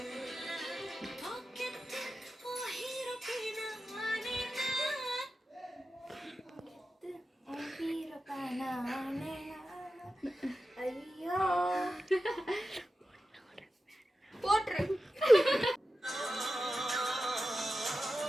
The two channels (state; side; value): normal; both; correlation 0.92